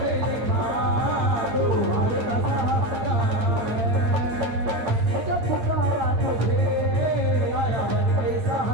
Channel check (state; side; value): late; left; 9.6 ms